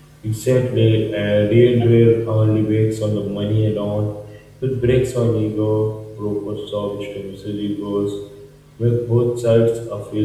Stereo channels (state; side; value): identical; both; correlation 1.00